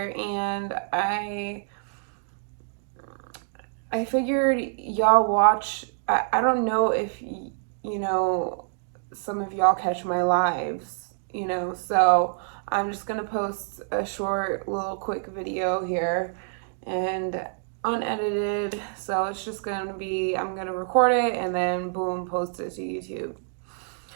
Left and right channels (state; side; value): silent; left; digital silence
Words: and I figured y'all watch. I don't know if you know, some of y'all catch my lives, so I'm just gonna post a short little quick video here and unedited. So it's just gonna be, I'm gonna record it and then boom, post it to YouTube.